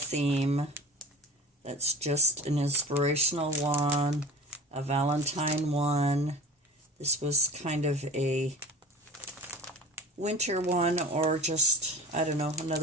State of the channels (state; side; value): normal; both; correlation 0.37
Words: That's just an inspirational one, a Valentine one. This was kind of a winter one, or just, I don't know,